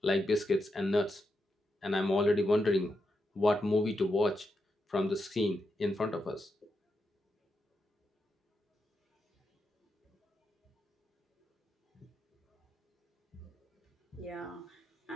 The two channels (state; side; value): normal; both; correlation 0.85